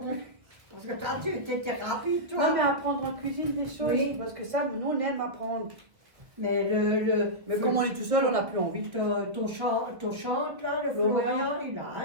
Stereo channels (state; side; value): late; left; 1.2 ms